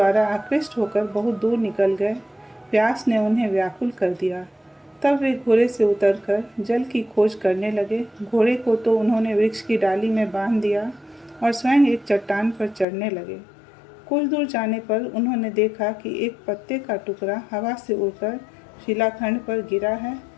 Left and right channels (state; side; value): drops out; right; at 12.9 s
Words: आकृष्ट होकर बहुत दूर निकल गए। प्यास ने उन्हें व्याकुल कर दिया। तब वे घोड़े से उतरकर जल की खोज करने लगे। घोड़े को तो उन्होंने वृक्ष की डाली में बांध दिया और स्वयं एक चट्टान पर चढ़ने लगे। कुछ दूर जाने पर उन्होंने देखा कि एक पत्ते का टुकड़ा हवा से उड़कर शिलाखंड पर गिरा है।